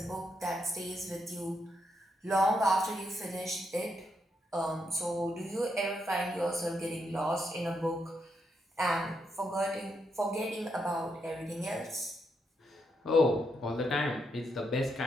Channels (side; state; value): both; normal; correlation 0.80